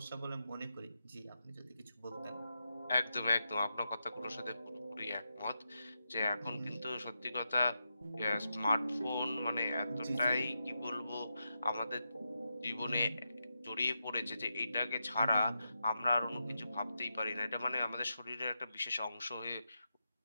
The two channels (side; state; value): both; inverted; correlation -0.87